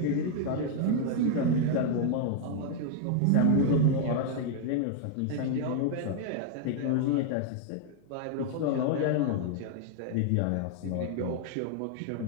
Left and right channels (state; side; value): different; both; correlation 0.00